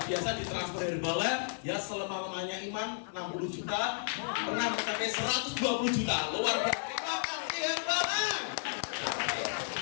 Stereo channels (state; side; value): silent; right; 56 dB below the other